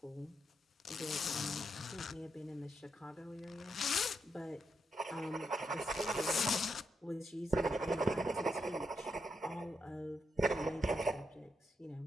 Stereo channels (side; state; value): both; normal; correlation 0.82